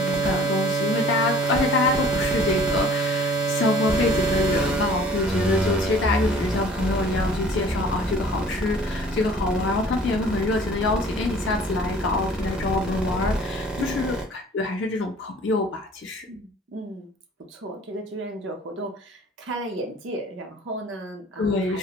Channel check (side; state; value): both; normal; correlation 0.51